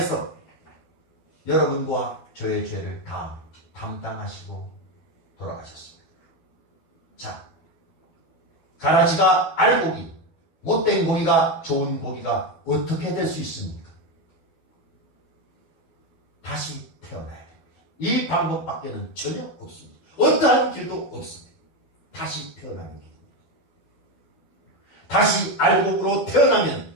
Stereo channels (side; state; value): right; late; 12 ms